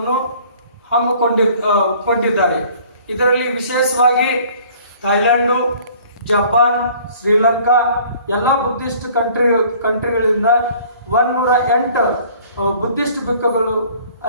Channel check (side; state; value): both; inverted; correlation -0.53